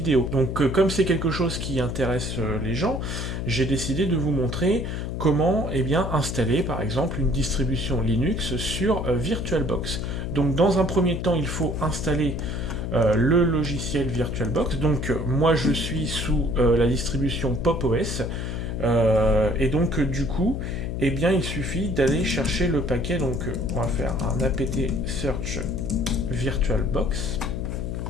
Donc comme c'est quelque chose qui intéresse les gens, j'ai décidé de vous montrer comment installer par exemple une distribution Linux sur VirtualBox. Donc dans un premier temps, il faut installer le logiciel VirtualBox. Donc moi je suis sous la distribution PopOS. Et donc du coup, il suffit d'aller chercher le paquet. Donc on va faire un apt search VirtualBox.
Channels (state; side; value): noise; left; hum, 4 dB below the sound